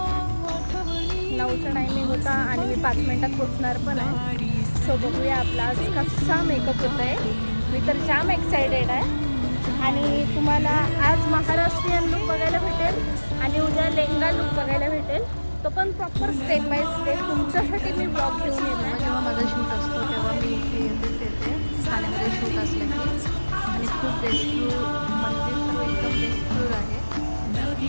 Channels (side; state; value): both; inverted; correlation -1.00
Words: 9चा टायमिंग होता आणि मी 5 मिनिटात पोचणार पण आहे. सो बघूया आपला आज कसा मेकअप होत आहे. मी तर जाम एक्सायटेड आहे. आणि तुम्हाला आज महाराष्ट्रीयन लुक बघायला भेटेल आणि उद्या लेहंगा लुक बघायला भेटेल. तो पण प्रॉपर स्टेप बाय स्टेप तुमच्यासाठी मी ब्लॉग घेऊन येत आहे. जेव्हा माझा शूट असतो तेव्हा मी इथे येते ठाण्यामध्ये शूट असलं की. आणि खूप बेस्टफुल मंदिर सर्व एकदम बेस्टफुल आहे.